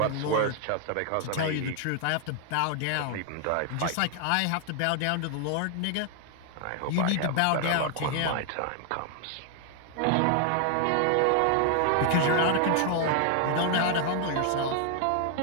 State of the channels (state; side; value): different; both; correlation 0.00